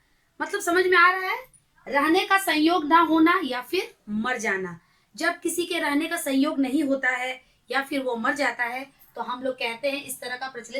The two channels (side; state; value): both; identical; correlation 1.00